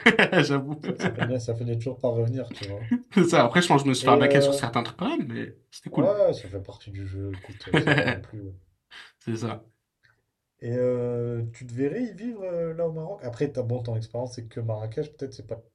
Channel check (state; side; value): identical; both; correlation 1.00